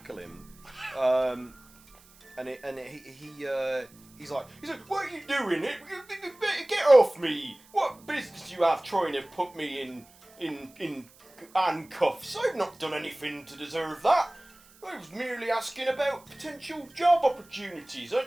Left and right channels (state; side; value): noise; right; hiss, 26 dB below the sound